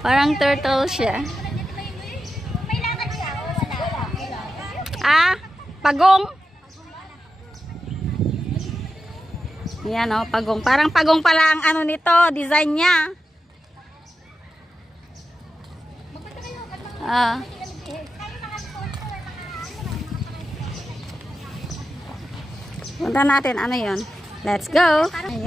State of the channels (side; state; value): both; normal; correlation 0.91